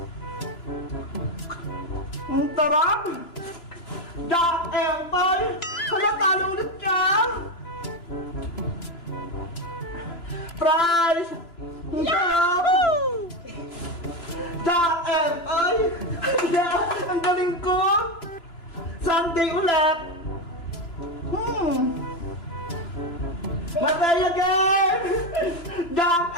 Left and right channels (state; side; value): late; right; 2.9 ms